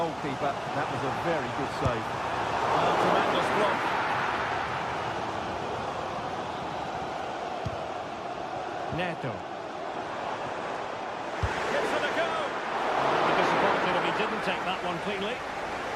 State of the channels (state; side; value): identical; both; correlation 1.00